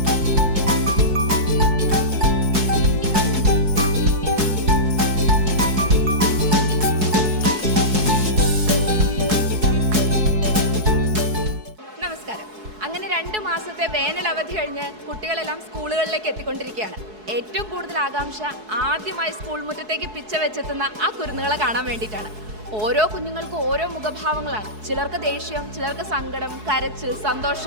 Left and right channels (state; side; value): late; left; 4.7 ms